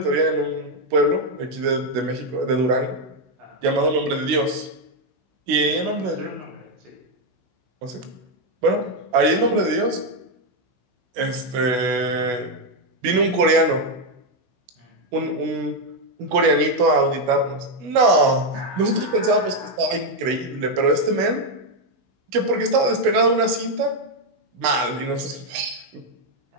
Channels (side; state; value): left; late; 16 ms